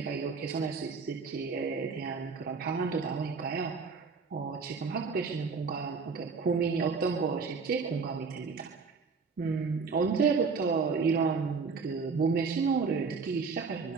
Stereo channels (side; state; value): left; quieter; 4.9 dB